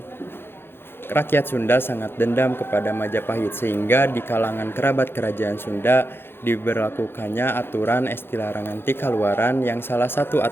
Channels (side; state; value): right; late; 0.11 ms